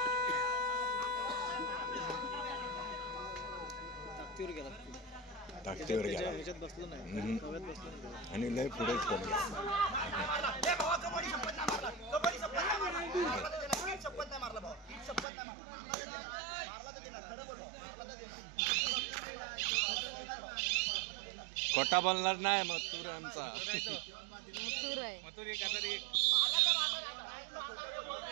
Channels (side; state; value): left; drops out; at 15.2 s